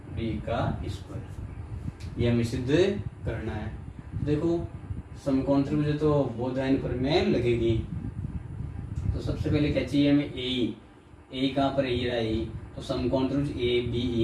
डी का स्क्वायर। ये हमें सिद्ध करना है। देखो समकोण त्रिभुज तो बोधायन प्रमेय लगेगी। तो सबसे पहले क्या चाहिए हमें, ए ई कहाँ पर है, ये रहा ए, तो समकोण त्रिभुज ए बी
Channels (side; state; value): both; identical; correlation 1.00